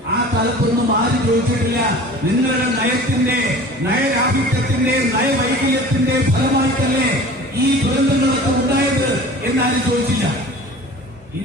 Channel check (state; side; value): normal; both; correlation 0.41